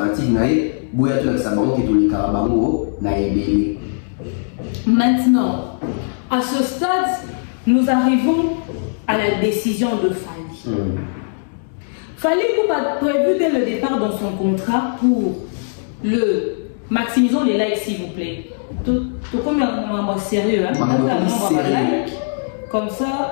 naïe. Bouya tout avec sa banque et tout les carabango naïe. Maintenant, à ce stade, nous arrivons à la décision de Fali. Fali Poupa a prévu dès le départ dans son contrat pour le maximisons les likes s'il vous plaît. Tout comme un sérieux, hein? Comme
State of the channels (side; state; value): right; silent; digital silence